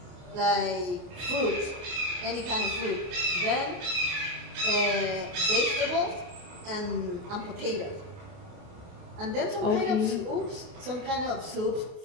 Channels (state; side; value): late; left; 28 ms